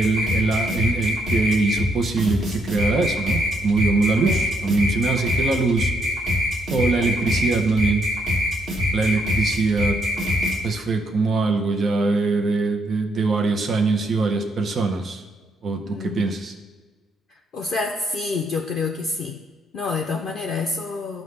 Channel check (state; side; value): normal; both; correlation 0.74